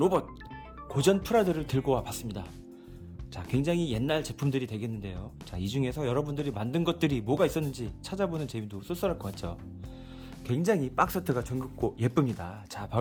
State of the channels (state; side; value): identical; both; correlation 1.00